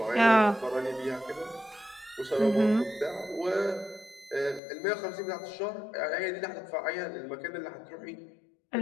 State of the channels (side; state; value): right; drops out; at 4.6 s